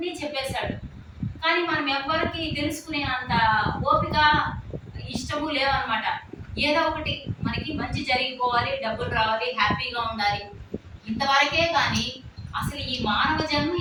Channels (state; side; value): identical; both; correlation 1.00